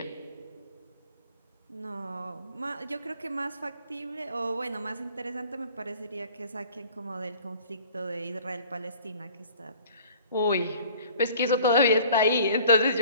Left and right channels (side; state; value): both; inverted; correlation -0.50